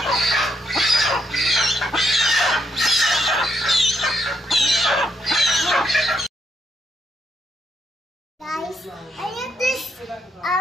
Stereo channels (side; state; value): both; normal; correlation 0.77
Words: Guys, I have this